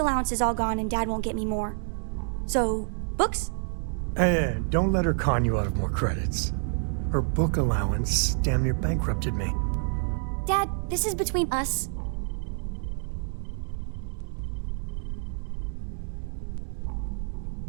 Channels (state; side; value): silent; left; 59 dB below the other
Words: is all gone and Dad won't get me more. So, books? Hey, don't let her con you out of more credits. Her book allowance damn near bankrupted me. Dad, this is between us.